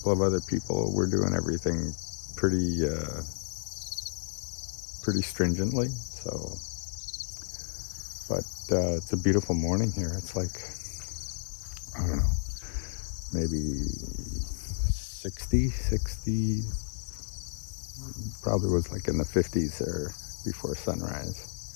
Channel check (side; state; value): right; silent; digital silence